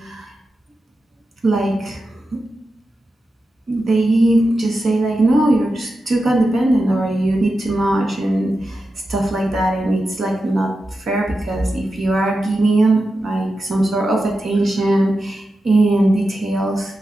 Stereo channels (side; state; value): both; normal; correlation 0.90